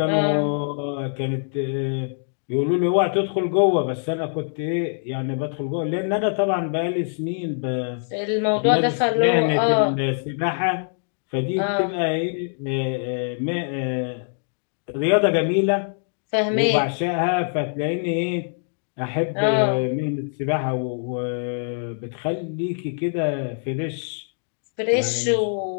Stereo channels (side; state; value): right; silent; digital silence